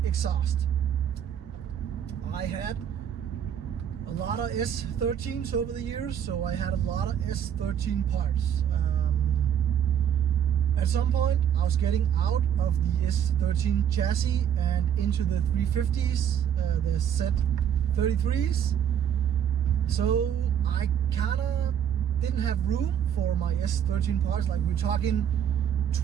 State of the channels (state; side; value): quieter; left; 9.1 dB